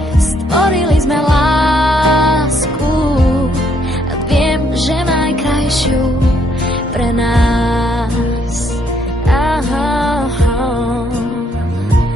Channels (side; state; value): both; normal; correlation 0.70